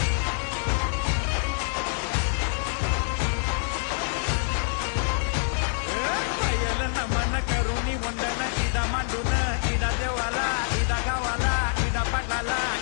नमन करुणी वंदन इडा मांडून इडा देवाला इडा गावाला इडा पाटलाला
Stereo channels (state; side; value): silent; right; digital silence